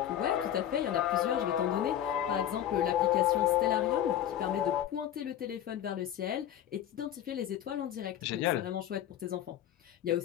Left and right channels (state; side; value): quieter; right; 11.0 dB